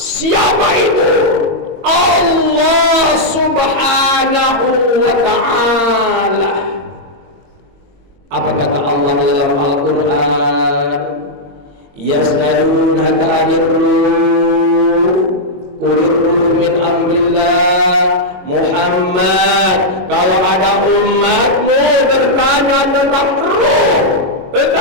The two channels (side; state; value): left; late; 22 ms